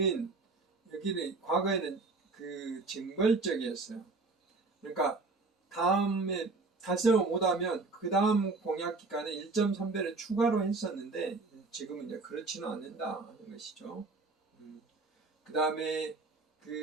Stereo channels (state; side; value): quieter; left; 3.7 dB